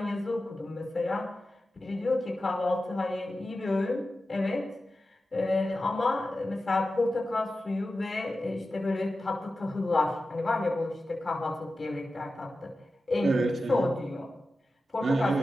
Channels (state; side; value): normal; both; correlation 0.93